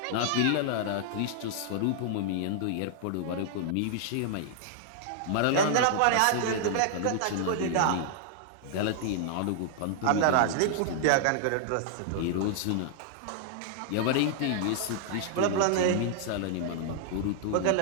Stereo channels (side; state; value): both; different; correlation -0.01